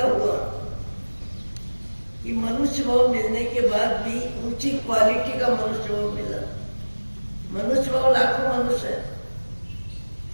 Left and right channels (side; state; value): both; inverted; correlation -1.00